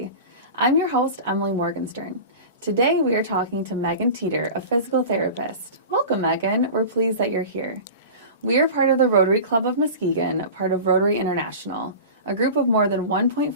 I'm your host, Emily Morgenstern. Today we are talking to Megan Teeter, a physical therapist. Welcome, Megan. We're pleased that you're here. We are part of the Rotary Club of Muskegon, part of Rotary International, a group of more than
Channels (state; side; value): inverted; both; correlation -0.33